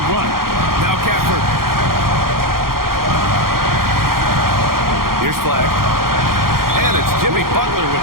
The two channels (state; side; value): late; left; 0.92 ms